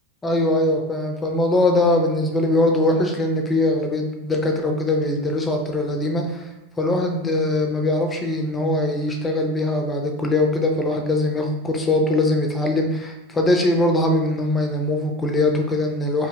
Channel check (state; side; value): normal; both; correlation 0.37